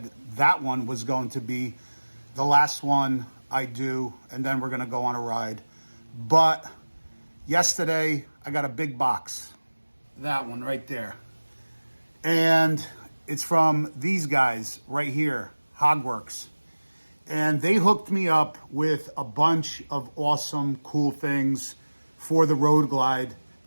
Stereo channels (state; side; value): inverted; both; correlation -1.00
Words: that one was going to be the last one I do, and then we're gonna go on a ride. But yesterday I got a big box, that one right there. And it's from these guys right here, Hogworks. And they hooked me up with a bunch of awesome, cool things for the Road Glide.